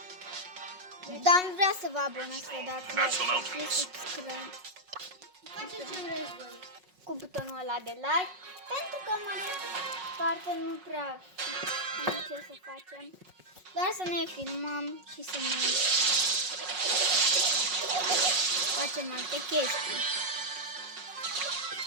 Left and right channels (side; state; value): left; late; 5.5 ms